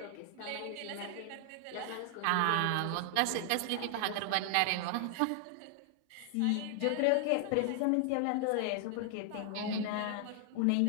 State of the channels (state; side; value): different; both; correlation 0.00